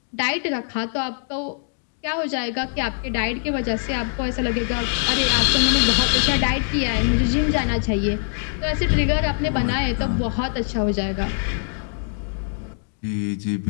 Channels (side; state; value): right; silent; digital silence